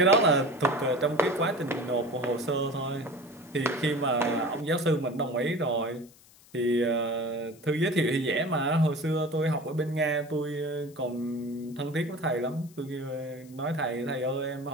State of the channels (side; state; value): left; noise; hiss, 26 dB below the sound